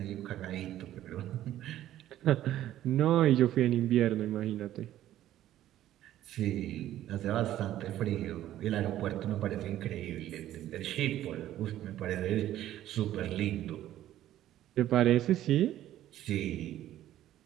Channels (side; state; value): left; quieter; 13.0 dB